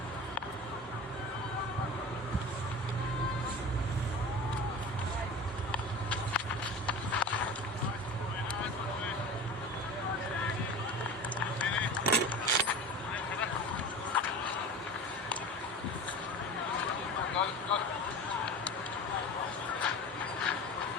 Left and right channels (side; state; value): both; normal; correlation 0.34